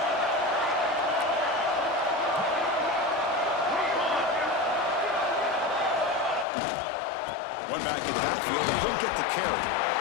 One back in the backfield, and he'll get the carry.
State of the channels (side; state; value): right; drops out; at 6.5 s